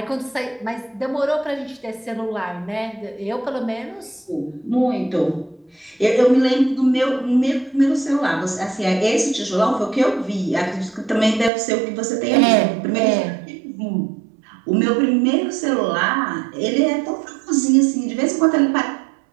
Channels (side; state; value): left; drops out; at 11.5 s